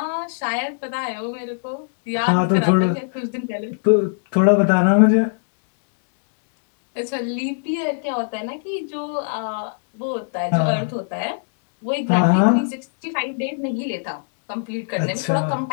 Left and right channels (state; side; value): silent; right; digital silence